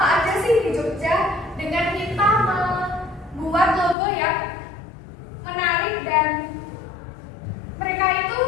aja sih di Jogja, dengan kita membuat logo yang menarik dan mereka itu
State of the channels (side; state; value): right; drops out; at 4.0 s